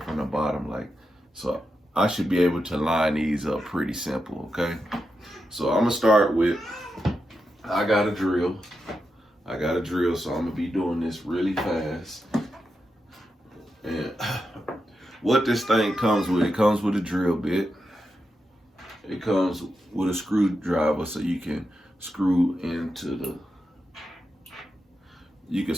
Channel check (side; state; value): both; normal; correlation 0.87